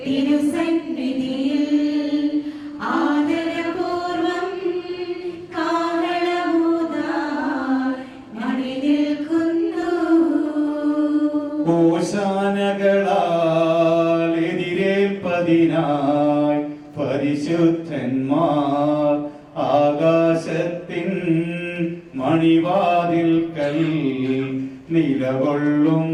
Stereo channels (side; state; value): both; identical; correlation 1.00